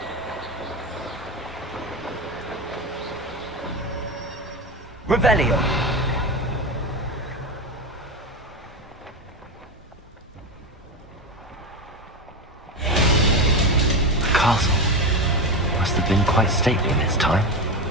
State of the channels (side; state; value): both; normal; correlation 0.18